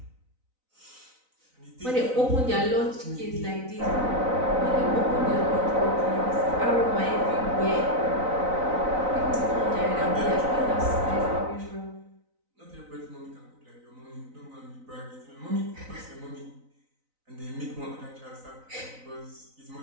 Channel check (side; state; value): left; late; 3.9 ms